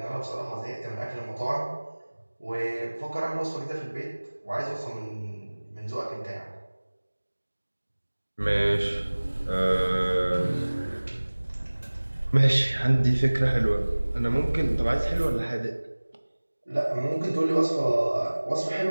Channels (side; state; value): both; inverted; correlation -1.00